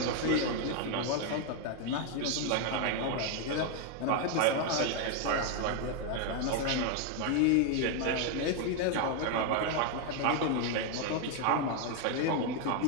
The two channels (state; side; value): different; both; correlation 0.01